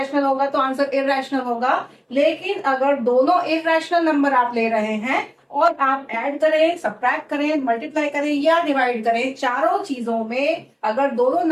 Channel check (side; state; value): both; identical; correlation 1.00